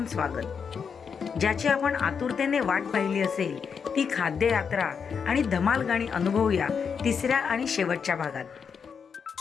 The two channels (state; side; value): quieter; right; 6.4 dB